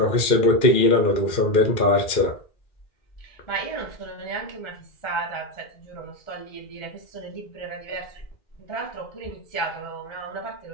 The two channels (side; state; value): right; late; 2.4 ms